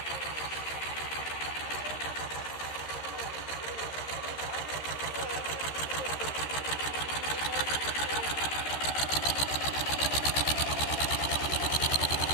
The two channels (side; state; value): right; late; 13 ms